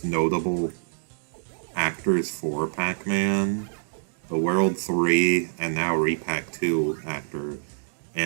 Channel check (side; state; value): left; silent; digital silence